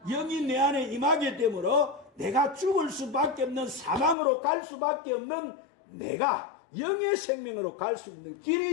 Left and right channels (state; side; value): drops out; right; at 4.2 s